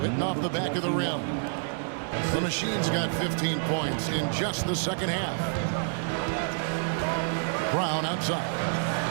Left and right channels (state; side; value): silent; left; 59 dB below the other